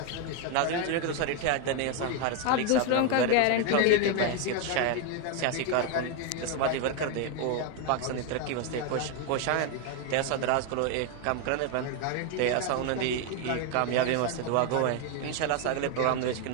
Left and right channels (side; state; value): both; different; correlation 0.01